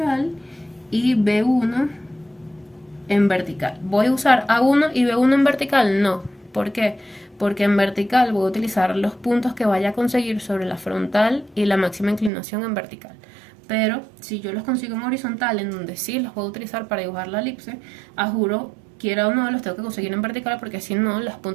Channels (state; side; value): drops out; left; at 12.3 s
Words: y B1 en vertical. ¿Voy a usar A1 y B1 en vertical? No. ¿Por qué? Porque en vertical voy a utilizar los puntos que vaya a conseguir sobre la frontal y la máxima inclinación en vertical. Pero si yo los consigo en horizontal, en donde sí los puedo utilizar para dibujar la elipse, a juro, quiera o no, los tengo que conseguir en vertical, porque si no, los